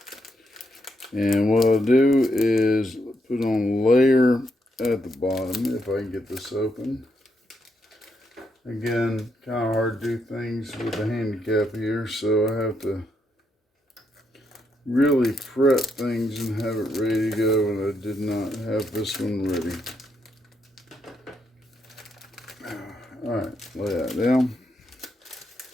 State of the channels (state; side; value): normal; both; correlation 0.78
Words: And what I'll do is put on a layer at the bottom, if I can get this open. Again, kind of hard to do things with a handicap here, so I have to really prep things and have it ready to go, and I did not have this one ready. Alright, lay that down.